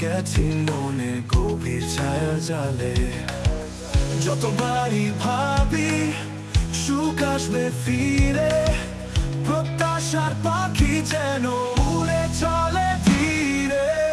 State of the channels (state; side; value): identical; both; correlation 1.00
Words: গেছি মনে গভীর ছায়া জালে। যতবারই ভাবি সুখ আসবে ফিরে, প্রত্যাশার পাখি যেন উড়ে চলে ধীরে।